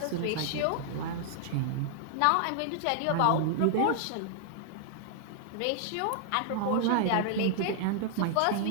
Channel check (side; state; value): both; different; correlation -0.01